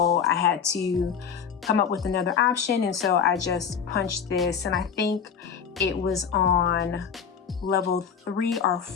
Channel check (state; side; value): quieter; right; 7.0 dB